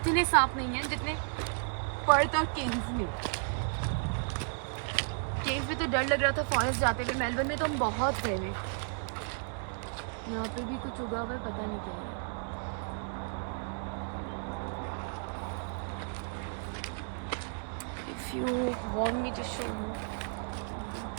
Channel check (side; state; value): left; silent; 56 dB below the other